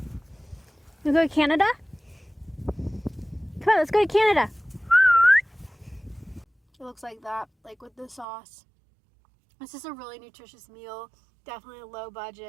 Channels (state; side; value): drops out; left; at 8.2 s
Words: to go to Canada? Come on, let's go to Canada. It looks like that, like with the sauce. This is a really nutritious meal. Definitely low